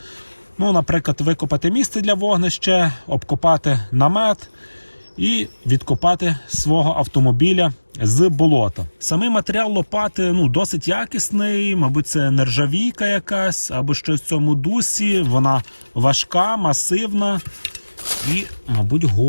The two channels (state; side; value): inverted; both; correlation -1.00